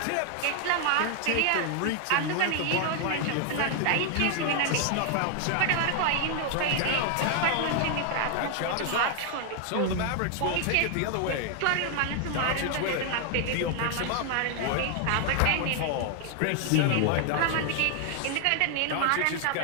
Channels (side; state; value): both; different; correlation 0.00